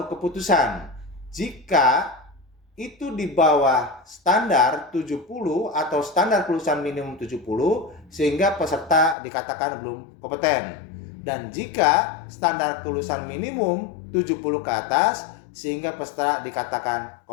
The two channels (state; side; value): drops out; right; at 9.2 s